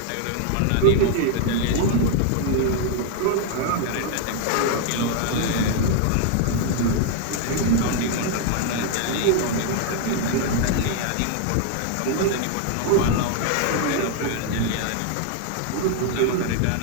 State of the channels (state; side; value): different; both; correlation 0.00